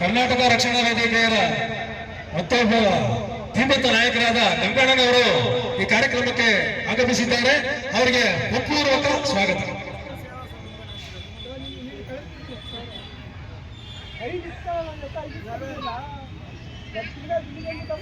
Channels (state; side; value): identical; both; correlation 1.00